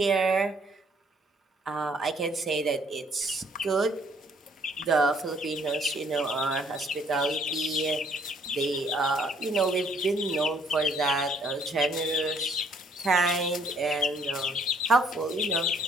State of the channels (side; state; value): both; normal; correlation 0.64